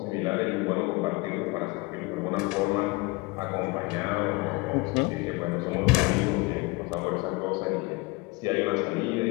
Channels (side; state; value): right; quieter; 25.0 dB